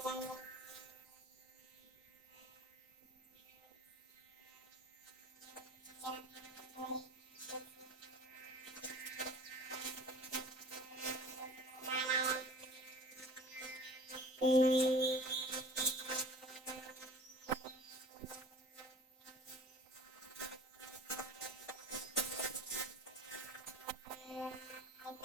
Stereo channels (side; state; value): both; normal; correlation 0.44